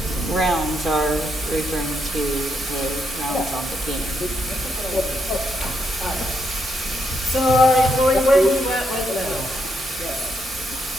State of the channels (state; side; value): normal; both; correlation 0.78